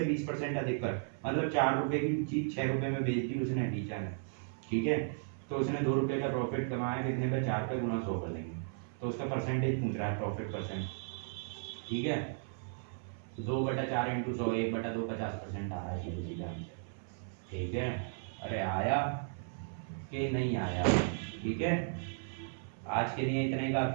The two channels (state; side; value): silent; left; 54 dB below the other